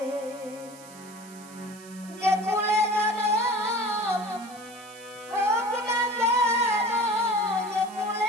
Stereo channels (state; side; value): noise; right; hiss, 20 dB below the sound